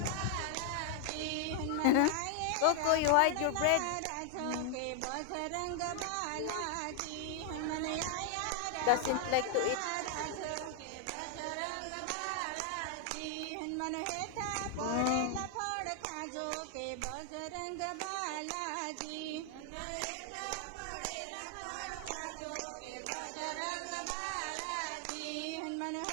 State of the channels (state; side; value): different; both; correlation 0.00